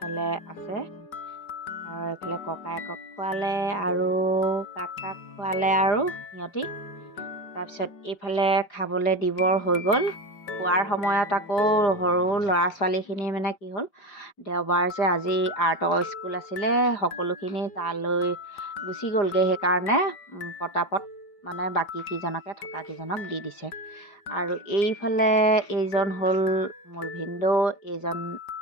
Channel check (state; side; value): late; right; 5.2 ms